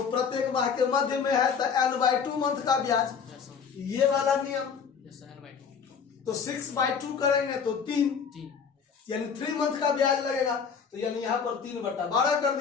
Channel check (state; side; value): quieter; right; 6.4 dB